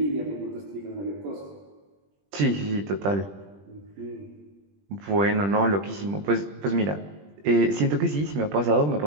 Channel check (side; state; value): left; late; 20 ms